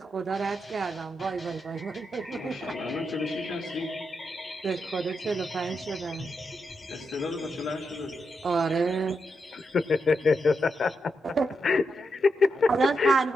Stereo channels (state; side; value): normal; both; correlation 0.84